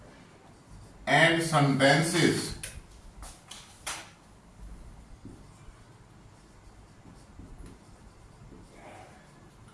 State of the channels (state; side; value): identical; both; correlation 1.00